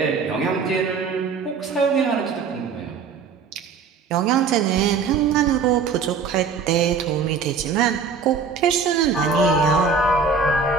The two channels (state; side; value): quieter; left; 5.3 dB